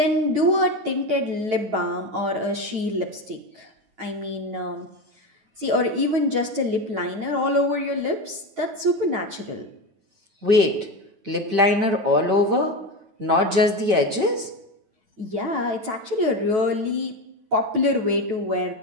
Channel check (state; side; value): late; left; 9.2 ms